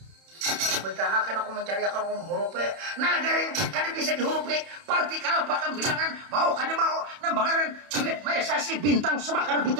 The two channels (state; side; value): late; left; 31 ms